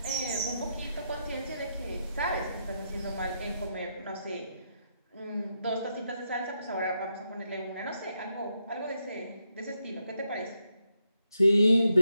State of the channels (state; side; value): inverted; both; correlation -0.81